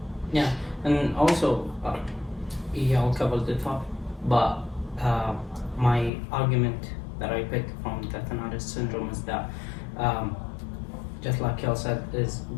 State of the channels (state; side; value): drops out; right; at 6.1 s